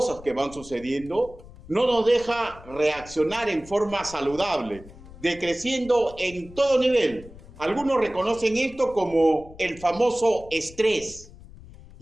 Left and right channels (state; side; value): noise; left; rumble, 19 dB below the sound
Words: que van sucediendo, no nos deja reaccionar en forma saludable, decreciendo en todo nivel. Algunos reconocen esto como el famoso estrés.